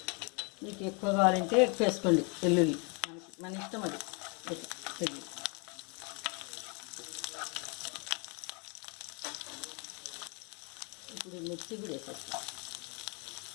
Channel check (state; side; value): quieter; right; 33.9 dB